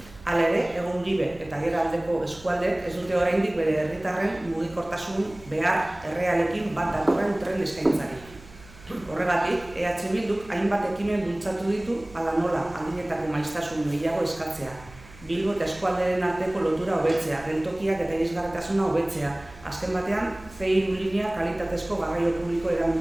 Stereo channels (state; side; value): noise; right; hum, 21 dB below the sound